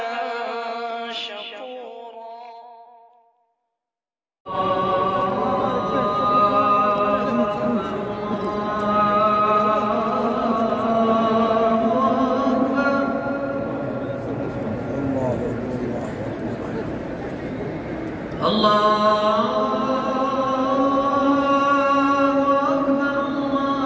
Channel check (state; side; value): identical; both; correlation 1.00